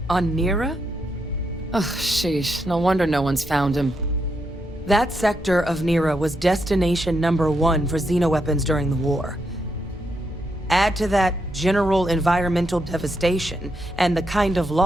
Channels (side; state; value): both; normal; correlation 0.80